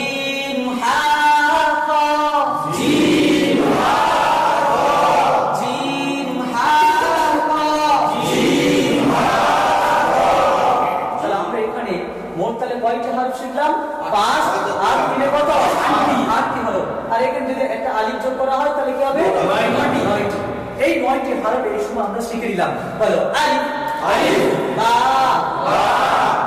হা খ। জিম হা খ। জিম হা খ। জিম হা। মোট তাহলে কয়টি হরফ শিখলাম? 5 আর 3 এ কত? 8টি হরফ। আর এখানে যদি একটা আলিফ যোগ করা হয় তাহলে কি হবে? 9টি। এই 9টি হরফ এই সময় আমরা শিখে নিলাম। বলো আলিফ, আলিফ, বা, বা,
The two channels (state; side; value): identical; both; correlation 1.00